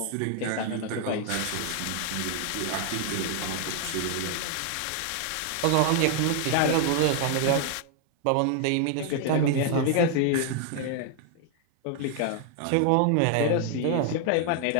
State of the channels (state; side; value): different; both; correlation 0.00